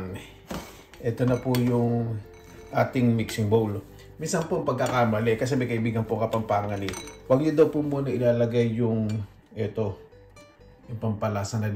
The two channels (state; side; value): identical; both; correlation 1.00